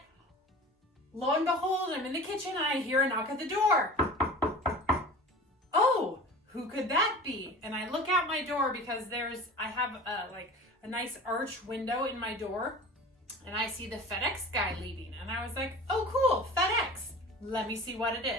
lo and behold, I'm in the kitchen and I hear a knock at the door. Oh, who could that be? And I look out my door because I have a nice arch window in my door, and I see the FedEx guy leaving. And I was like, oh cool, FedEx. Let me see what it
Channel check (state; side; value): normal; both; correlation 0.38